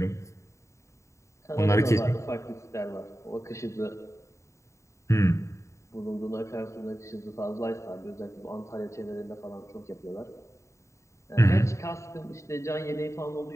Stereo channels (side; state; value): right; late; 0.14 ms